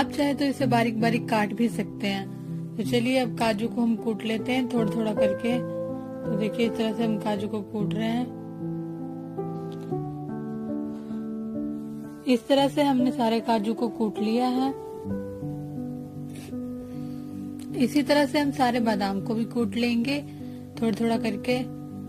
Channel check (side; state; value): both; identical; correlation 1.00